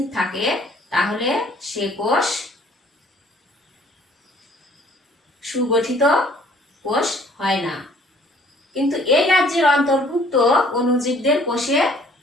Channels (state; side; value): normal; both; correlation 0.57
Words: থাকে তাহলে সে কোষ সুগঠিত কোষ হয় না। কিন্তু এই রাজ্যের অন্তর্ভুক্ত অণুজীবদের কোষে